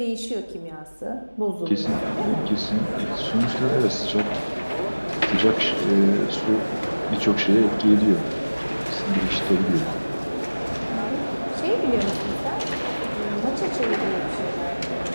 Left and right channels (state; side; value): inverted; both; correlation -1.00